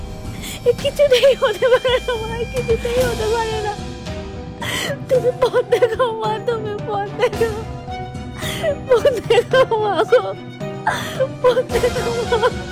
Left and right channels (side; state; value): both; identical; correlation 1.00